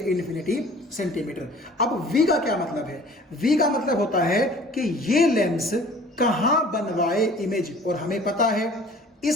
इन्फिनिटी सेंटीमीटर। अब v का क्या मतलब है, v का मतलब होता है कि ये लेंस कहां बनवाए इमेज, और हमें पता है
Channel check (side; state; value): both; normal; correlation 0.49